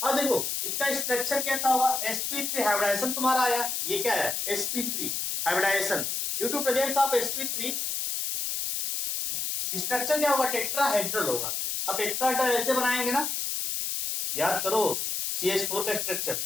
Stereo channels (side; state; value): left; noise; hiss, 1 dB below the sound